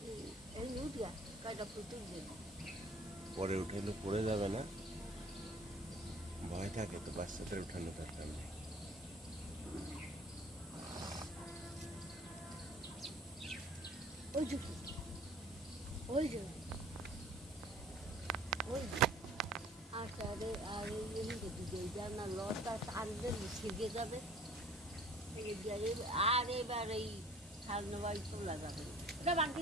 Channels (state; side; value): normal; both; correlation 0.50